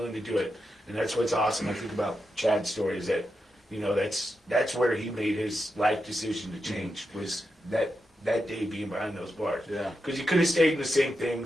to do it, and that's what's awesome. I think about Chad's story is that that's where he made his life decision to change was that day being behind those bars. Yeah. Because he could have stayed in the same thing,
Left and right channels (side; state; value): both; normal; correlation 0.87